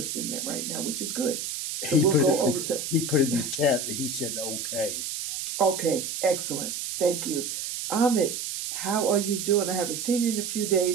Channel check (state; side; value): noise; right; hiss, 5 dB below the sound